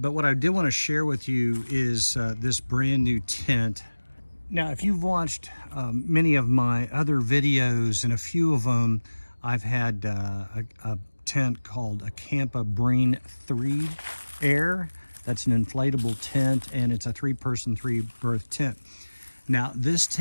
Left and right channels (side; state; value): both; inverted; correlation -1.00